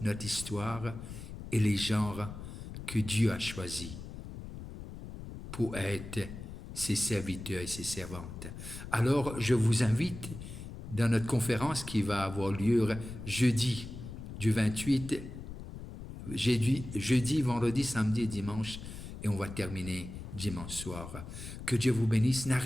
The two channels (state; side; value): noise; left; rumble, 11 dB below the sound